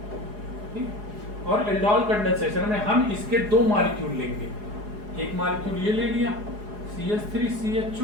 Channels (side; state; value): left; late; 4.8 ms